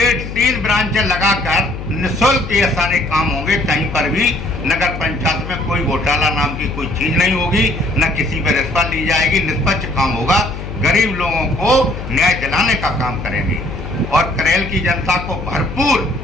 3 ब्रांचें लगाकर निःशुल्क ये सारे काम होंगे। कहीं पर भी नगर पंचायत में कोई घोटाला नाम की कोई चीज नहीं होगी, न किसी पर रिश्वत ली जाएगी, निष्पक्ष काम होगा। गरीब लोगों को न्याय दिलाने का काम करेंगे और करेल की जनता को भरपूर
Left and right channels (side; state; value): left; noise; hum, 8 dB below the sound